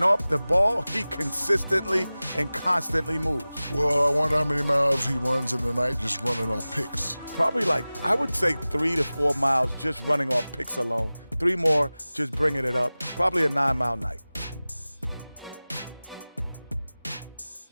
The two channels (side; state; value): both; inverted; correlation -0.98